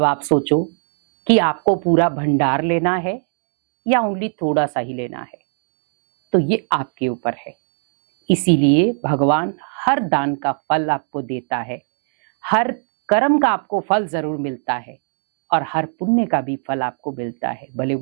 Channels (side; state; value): left; silent; 62 dB below the other